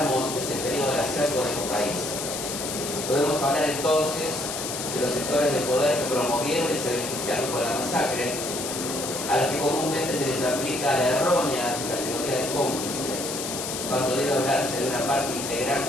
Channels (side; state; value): left; noise; hiss, 5 dB below the sound